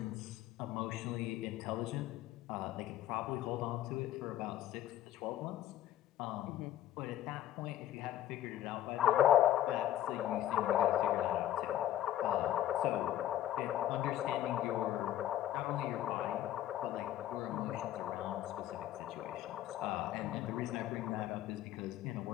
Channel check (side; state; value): right; quieter; 12.6 dB